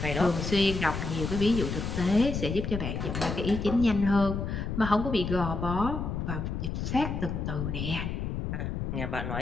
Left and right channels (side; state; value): left; noise; rumble, 3 dB below the sound